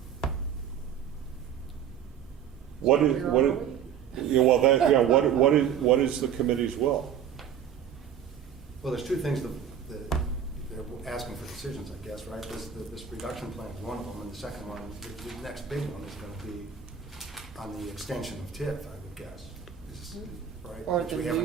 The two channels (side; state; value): left; quieter; 8.6 dB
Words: What is, yeah, well, that, yeah, what is the committee's will? Well, there's two things that they're asking for decisions, I guess, right? This reduction plan is one of them, and the second one, the next big one is going to be on the extension of TIF, I would guess. Right? Or Which the we haven't